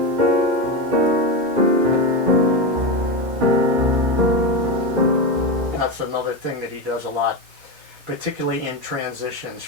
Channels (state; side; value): late; left; 2.2 ms